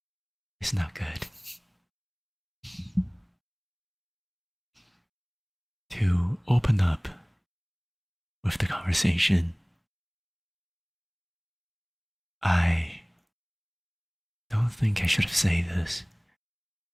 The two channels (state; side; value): identical; both; correlation 1.00